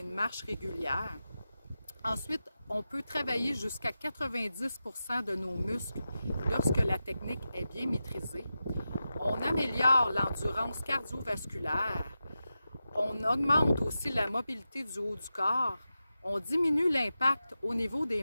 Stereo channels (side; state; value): both; inverted; correlation -0.91